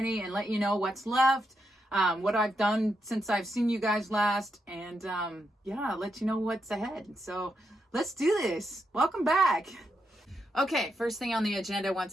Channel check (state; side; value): normal; both; correlation 0.82